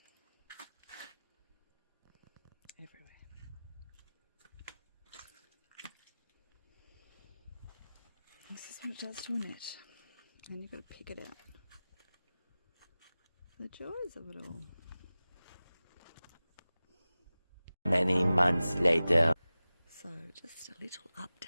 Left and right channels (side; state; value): both; inverted; correlation -0.97